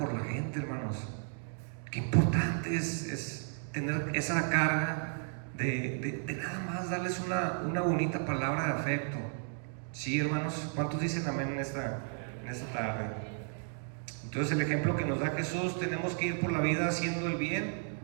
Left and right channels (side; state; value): left; silent; 55 dB below the other